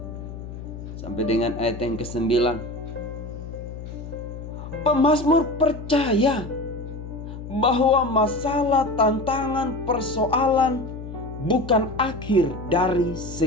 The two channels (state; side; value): noise; left; hum, 11 dB below the sound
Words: sampai dengan ayat yang ke-9. Pemazmur percaya bahwa masalah, tantangan, persoalan bukan akhir dari